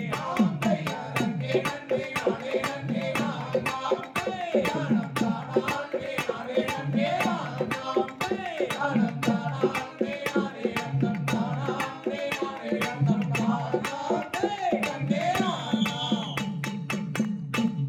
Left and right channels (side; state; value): both; identical; correlation 1.00